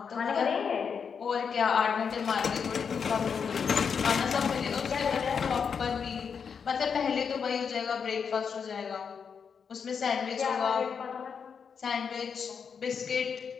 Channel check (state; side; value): quieter; right; 6.4 dB